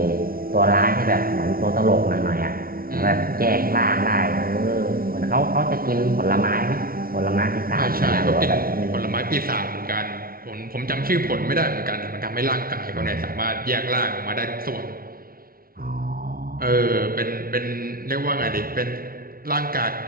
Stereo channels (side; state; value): left; late; 0.43 ms